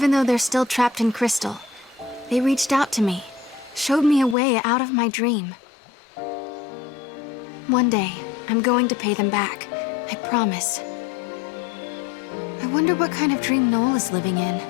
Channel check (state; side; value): drops out; right; at 4.4 s